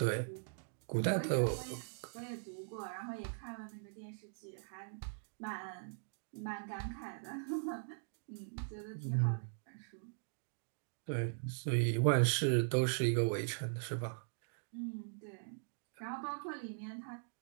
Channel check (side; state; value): left; silent; digital silence